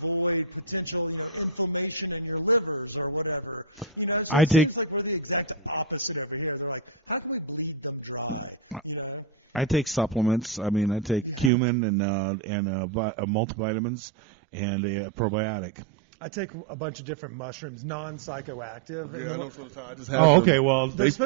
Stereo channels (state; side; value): drops out; left; at 11.5 s